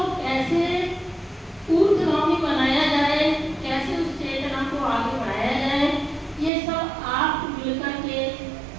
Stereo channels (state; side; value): drops out; left; at 6.5 s